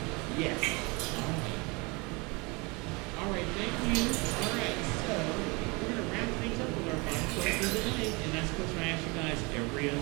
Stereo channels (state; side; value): quieter; left; 27.6 dB